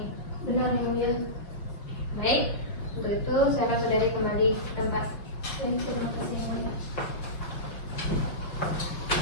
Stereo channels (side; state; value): right; late; 5.6 ms